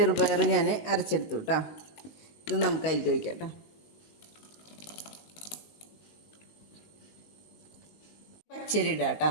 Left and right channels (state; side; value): late; right; 19 ms